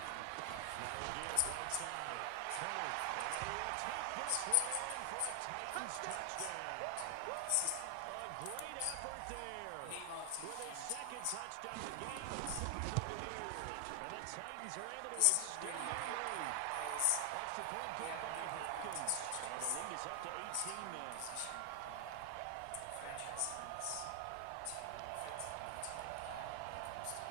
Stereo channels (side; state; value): both; different; correlation 0.00